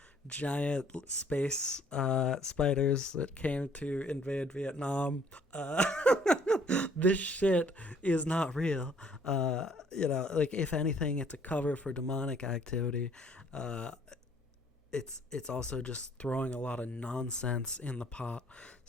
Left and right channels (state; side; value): normal; both; correlation 0.60